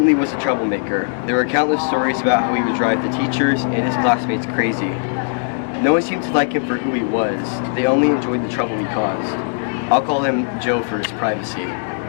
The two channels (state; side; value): silent; right; digital silence